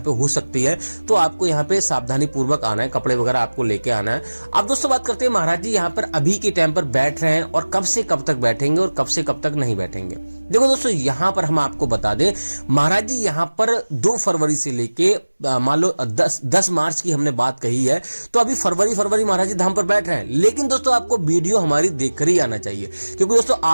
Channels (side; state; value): both; inverted; correlation -1.00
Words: हो सकती है, तो आपको यहाँ पे सावधानी पूर्वक आना है, कपड़े वगैरह आपको लेके आना है। अब दोस्तों बात करते हैं महाराज जी यहाँ पर अभी के टाइम पर बैठ रहे हैं और कब से कब तक बैठेंगे और कब से कब तक नहीं बैठेंगे। देखो दोस्तों, यहाँ पर हम आपको बता दें महाराज जी यहाँ पर 2 फरवरी से लेके मान लो 10 मार्च की हमने बात कही है, तो अभी फरवरी महाराज जी धाम पर बैठ रहे हैं। लेकिन दोस्तों आपको वीडियो हमारी देखकर ही आना चाहिए, क्योंकि दोस्तों